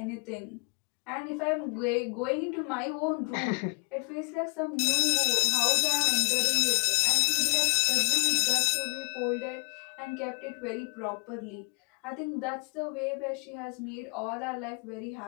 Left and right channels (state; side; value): quieter; right; 34.9 dB